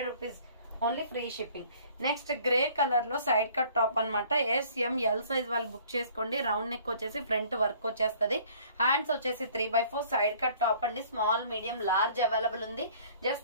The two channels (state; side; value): inverted; both; correlation -0.54